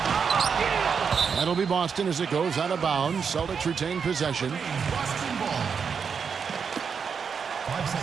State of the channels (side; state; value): left; quieter; 6.3 dB